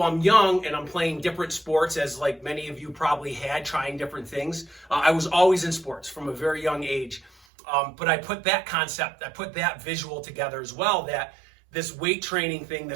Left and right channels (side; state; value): left; drops out; at 7.3 s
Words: I'm young and I'm playing different sports, as like many of you probably had, trying different things, I was always in sports from a very young age. But I put that visual together as well, that this weight training thing,